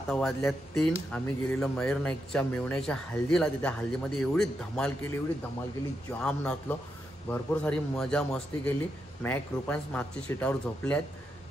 वाजल्या 3. आम्ही गेलेलो मयूर नाईकच्या मेवण्याच्या हल्दीला. तिथे हल्दीमध्ये एवढी धमाल केली जाम नाचलो. भरपूर सारी मजा मस्ती केली. मॅक रुपांस मागच्या सीटावर झोपल्यात.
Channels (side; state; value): both; normal; correlation 0.84